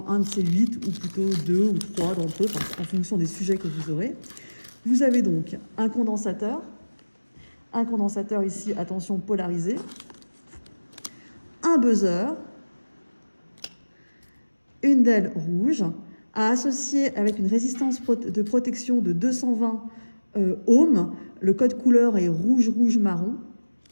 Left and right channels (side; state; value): both; inverted; correlation -1.00